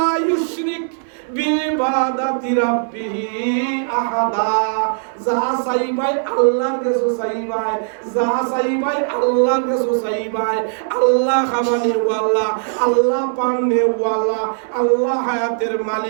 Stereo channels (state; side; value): silent; left; 67 dB below the other